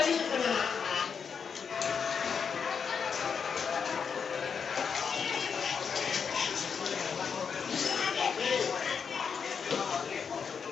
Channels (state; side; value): quieter; right; 6.4 dB